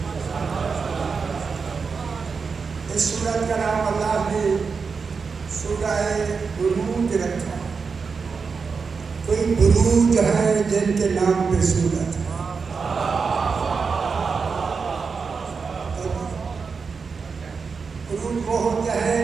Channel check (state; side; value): quieter; left; 5.2 dB